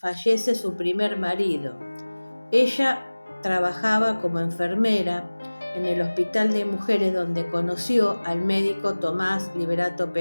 su primer marido. Ella trabajaba como enfermera en el Hospital de Mujeres, donde conoció al médico Tomás Liberato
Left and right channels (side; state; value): both; inverted; correlation -1.00